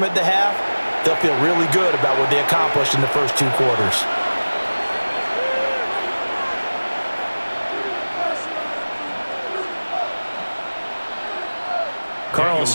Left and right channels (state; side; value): inverted; both; correlation -1.00